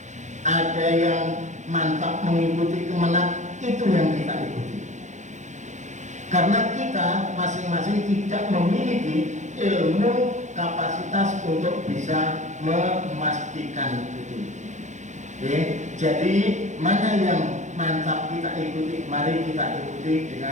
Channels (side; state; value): left; late; 0.35 ms